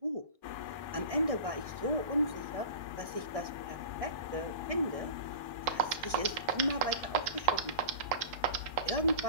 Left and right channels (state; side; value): late; left; 1.6 ms